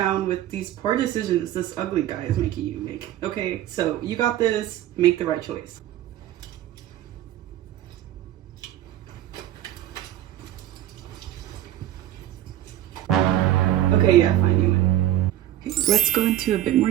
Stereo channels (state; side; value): quieter; left; 12.8 dB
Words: with these poor decisions this ugly guy is making you make, okay? So, you got this. Make the right choice. Okay, yeah, fine, you win. Okay, let's go into a bit more